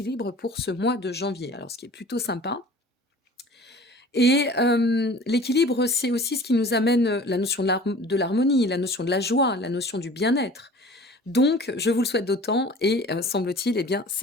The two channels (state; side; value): normal; both; correlation 0.44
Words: pour ce mois de janvier. Alors, ce qui est plutôt sympa. Et l'équilibre, c'est aussi ce qui nous amène la notion de l'harmonie, la notion de la joie, la notion du bien-être. Donc, je vous le souhaite d'autant et semble-t-il, eh bien,